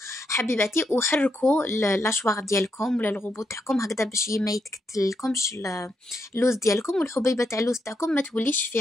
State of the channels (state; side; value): normal; both; correlation 0.81